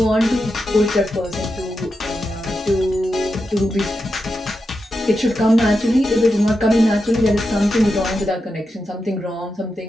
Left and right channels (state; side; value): normal; both; correlation 0.88